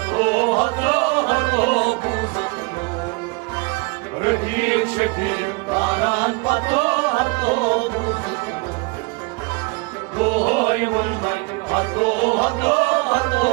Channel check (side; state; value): left; quieter; 28.0 dB